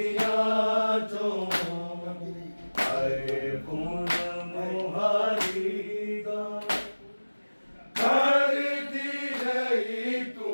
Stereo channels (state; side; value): inverted; both; correlation -1.00